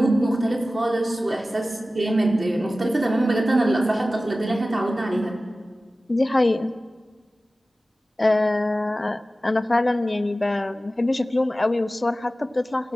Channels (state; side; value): normal; both; correlation 0.96